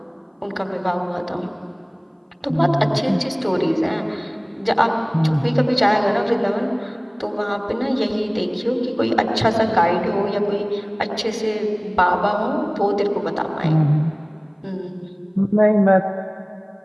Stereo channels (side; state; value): both; identical; correlation 1.00